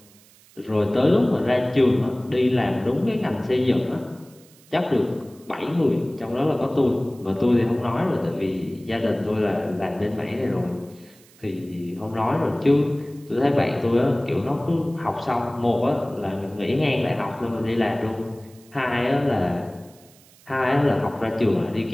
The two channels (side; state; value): right; noise; hiss, 27 dB below the sound